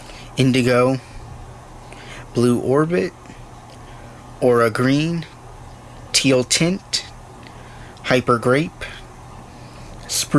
Indigo. Blue orbit. Aura green. Teal tint. Hyper grape.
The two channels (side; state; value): both; identical; correlation 1.00